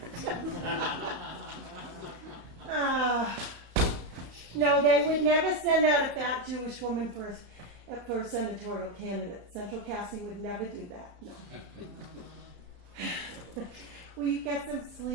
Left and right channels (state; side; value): late; left; 34 ms